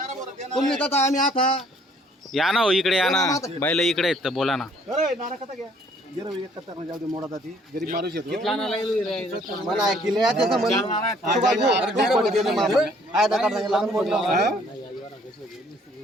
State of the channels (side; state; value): both; normal; correlation 0.61